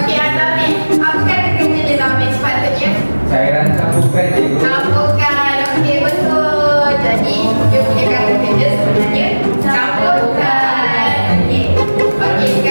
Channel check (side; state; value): both; inverted; correlation -1.00